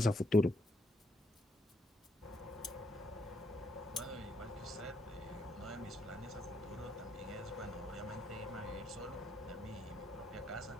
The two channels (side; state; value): both; normal; correlation 0.75